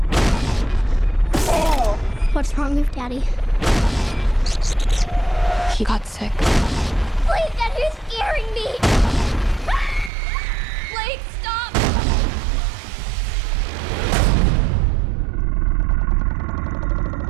What's wrong with Daddy? He got sick. Blake, Daddy's scaring me! Blake, stop!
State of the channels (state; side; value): drops out; left; at 10.1 s